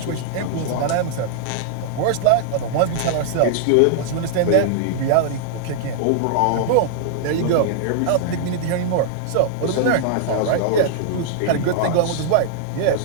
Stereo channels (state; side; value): different; both; correlation -0.01